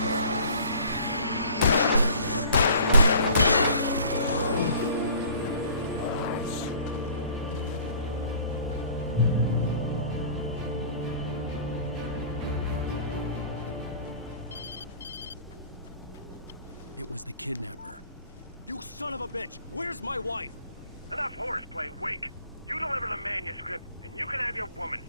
It was the kidnapper. You son of a bitch! Where's my wife? Enough horseplay, Wake. You deliver the manuscript, and you can have your woman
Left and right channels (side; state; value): both; inverted; correlation -0.49